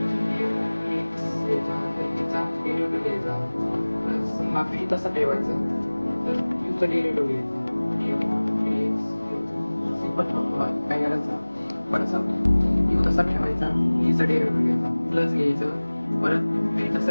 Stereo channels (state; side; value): inverted; both; correlation -1.00